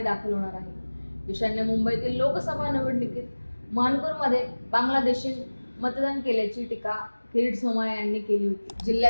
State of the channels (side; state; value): both; inverted; correlation -1.00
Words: दाखल होणार आहे। ईशान्य मुंबईतील लोकसभा निवडणुकीत मानकोरमध्ये बांगलादेशी मतदान केल्याची टीका किरीट सोमय्या यांनी केली होती।